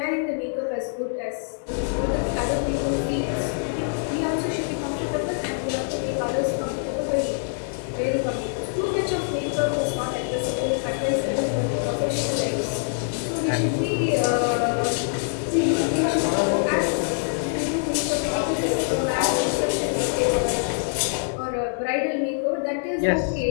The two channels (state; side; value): silent; right; 62 dB below the other